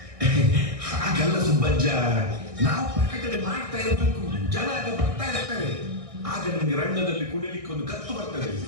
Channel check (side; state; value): left; late; 1.6 ms